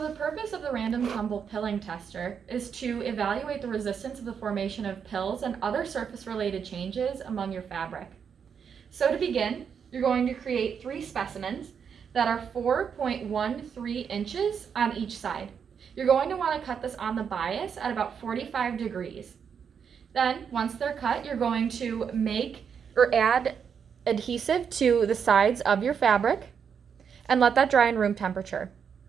the purpose of the random tumble pilling tester is to evaluate the resistance of the formation of pills and other surface-related changes among your fabric. So to begin, you're going to create 3 specimens that are 4.13 inches on each side. You're going to want to cut this on the bias at about 45 degrees. Then, once they're cut, you're going to make or add adhesive to the sides of your fabric and let that dry in room temperature.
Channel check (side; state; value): left; quieter; 7.1 dB